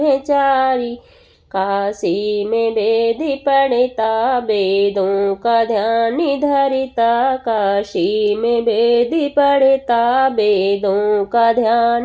काशी में वेद पढ़ता, वेदों का ध्यान धरता, काशी में वेद पढ़ता, वेदों का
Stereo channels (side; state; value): both; identical; correlation 1.00